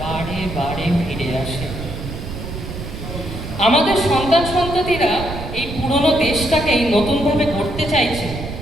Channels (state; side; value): noise; right; rumble, 8 dB below the sound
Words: বারে বারে ফিরে আসে। আমাদের সন্তান সন্ততিরা এই পুরনো দেশটাকেই নতুনভাবে গড়তে চাইছে।